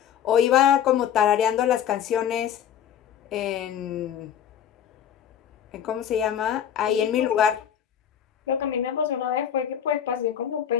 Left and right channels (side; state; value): right; quieter; 9.5 dB